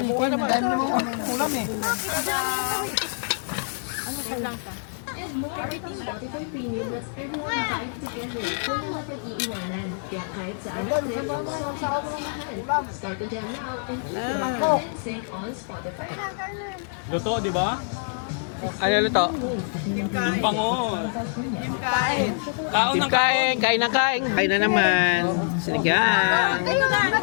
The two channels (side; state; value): right; silent; digital silence